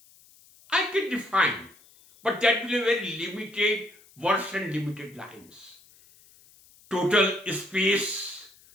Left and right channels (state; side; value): noise; left; hiss, 27 dB below the sound